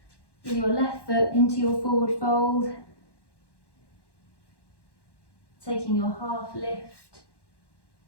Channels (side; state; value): right; late; 1.1 ms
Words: with your left foot into your forward fold, taking your half lift